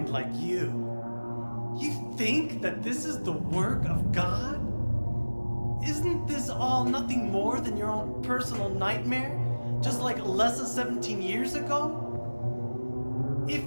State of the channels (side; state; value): both; inverted; correlation -1.00